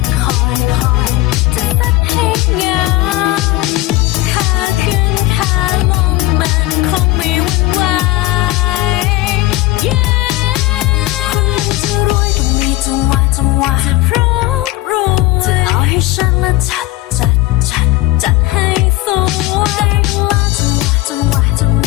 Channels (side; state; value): right; quieter; 17.4 dB